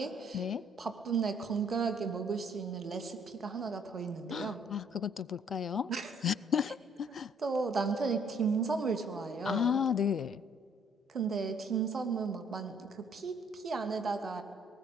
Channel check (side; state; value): both; normal; correlation 0.62